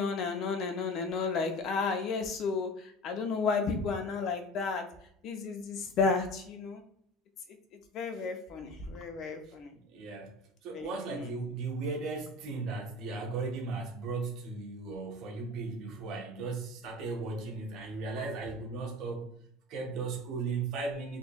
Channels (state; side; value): normal; both; correlation 0.36